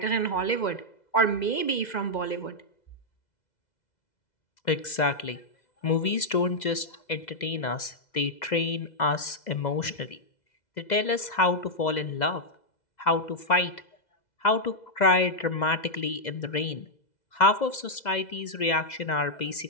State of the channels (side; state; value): right; late; 2.0 ms